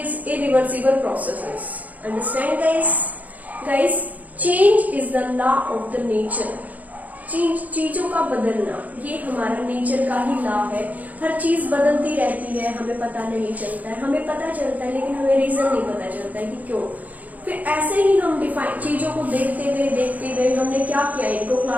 irreversible processes. Understand guys? Guys, change is the law of the nature. चीजों का बदलना ये हमारा nature का ही law है. हर चीज बदलती रहती है, हमें पता नहीं चलता है. हमें पता चलता है लेकिन हमें रीजन नहीं पता चलता है कि क्यों. फिर ऐसे ही हम डिफाइन चीजों को देखते हुए हमने क्या किया, इनको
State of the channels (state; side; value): late; left; 0.077 ms